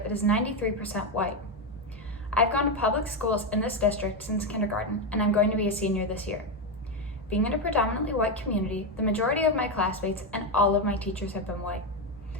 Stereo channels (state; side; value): normal; both; correlation 0.09